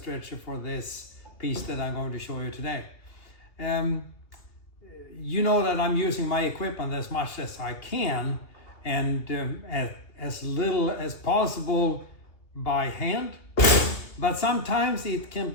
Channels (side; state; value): right; late; 2.7 ms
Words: for this piece that I'm going to show you today. You know that I'm using my equipment as much as I can, and as little as possible by hand, but sometimes it can